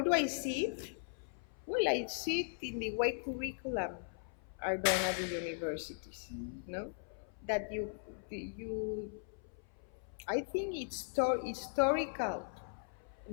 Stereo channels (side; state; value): right; silent; 52 dB below the other